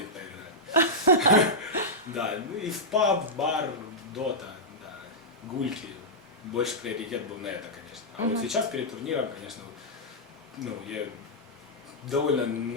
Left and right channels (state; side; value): normal; both; correlation -0.09